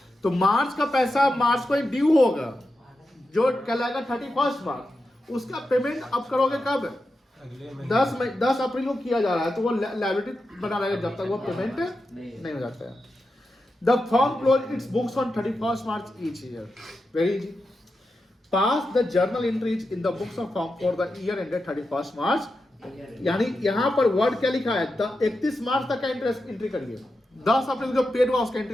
तो मार्च का पैसा मार्च को ही ड्यू होगा, जो कहलाएगा 31 मार्च। उसका पेमेंट अब करोगे कब? 10 अप्रैल को किया जा रहा है, तो वो लायबिलिटी बना रहेगा जब तक वो पेमेंट नहीं हो जाता है। The firm close it's books on 31 March each year. Very easy. Pass the journal entries in the books of firm for the year ended 31 मार्च। यानी यहाँ पर वर्ड क्या लिखा है? 31 मार्च तक का इंटरेस्ट एंट्री करिए, 10 अप्रैल जो पेड हुआ उसका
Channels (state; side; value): normal; both; correlation 0.89